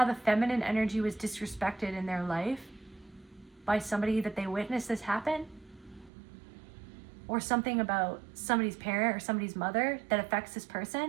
the feminine energy was disrespected in their life by somebody that they witnessed this happen. Or something about somebody's parent or somebody's mother that affects this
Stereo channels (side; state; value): left; drops out; at 6.1 s